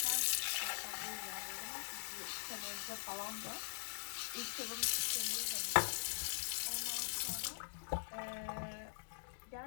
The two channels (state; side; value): silent; right; digital silence